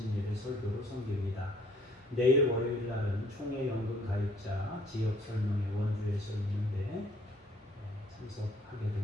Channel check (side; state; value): both; normal; correlation 0.61